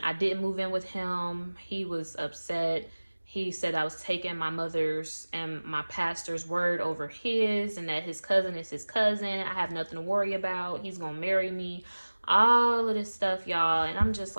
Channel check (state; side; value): inverted; both; correlation -1.00